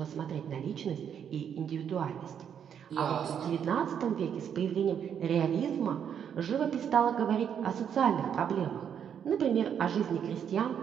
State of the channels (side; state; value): left; quieter; 8.3 dB